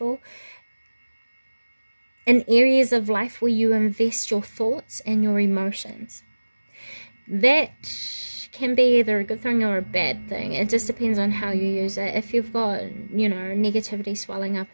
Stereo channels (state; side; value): inverted; both; correlation -1.00